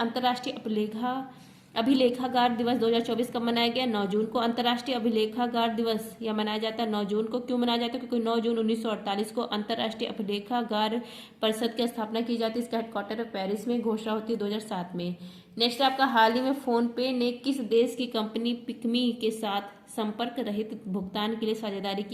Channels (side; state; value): both; identical; correlation 1.00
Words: अभिलेखागार दिवस 2024 कब मनाया गया? 9 जून को। अंतर्राष्ट्रीय अभिलेखागार दिवस यह मनाया जाता है 9 जून को। क्यों मनाया जाता है? क्योंकि 9 जून 1948 को अंतर्राष्ट्रीय अभिलेखागार परिषद की स्थापना की जाती है। इसका हेडक्वार्टर पेरिस में, घोषणा होती है 2007 में। नेक्स्ट आपका हाल ही में फोन पे ने किस देश की कंपनी पिकमी के साथ संपर्क रहित भुगतान के लिए साझेदारी